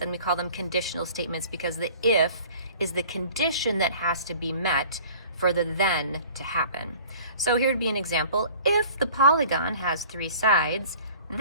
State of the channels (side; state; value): both; inverted; correlation -0.48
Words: we call them conditional statements because the if is the condition that has to be met for the then to happen. So here would be an example. If the polygon has 3 sides,